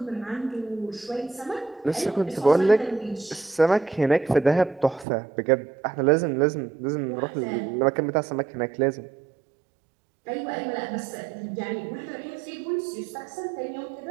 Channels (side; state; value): left; drops out; at 5.1 s